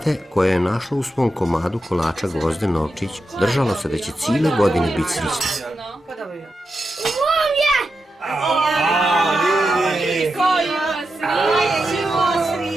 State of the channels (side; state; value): both; normal; correlation 0.88